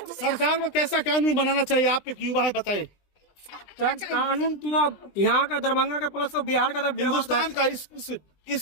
सरकार को कैसा कानून बनाना चाहिए आपके युवा है बताए? कानून तो अब यहाँ का दरभंगा का प्लस तो बिहार का, तो हिंदुस्तान का इस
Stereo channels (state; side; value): late; right; 20 ms